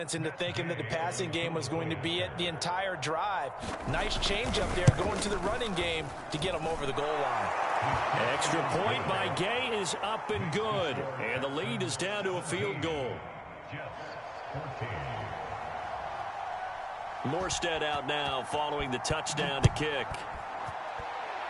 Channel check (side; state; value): both; identical; correlation 1.00